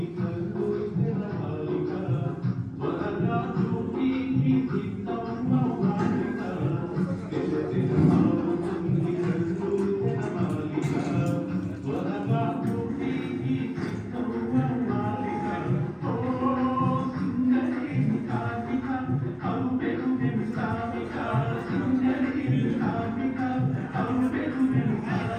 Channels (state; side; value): identical; both; correlation 1.00